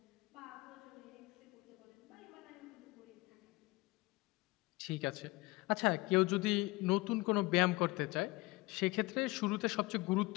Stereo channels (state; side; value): quieter; right; 22.1 dB